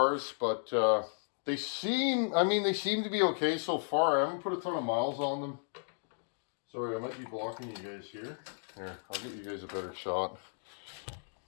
but they seem to be okay so far. I haven't put a ton of miles on them. Sorry, I might be blocking you guys here. Here, I'll get you guys a better shot.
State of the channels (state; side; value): silent; right; digital silence